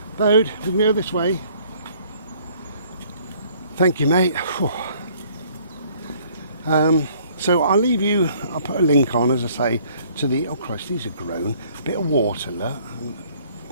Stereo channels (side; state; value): both; inverted; correlation -0.59